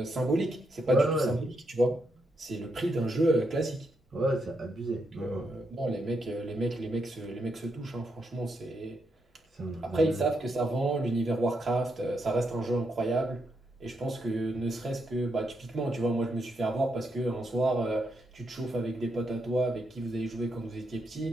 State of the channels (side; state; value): both; normal; correlation 0.81